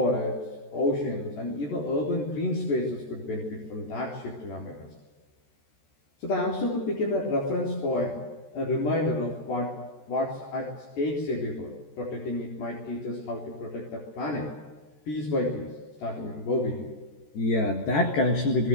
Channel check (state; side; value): late; right; 14 ms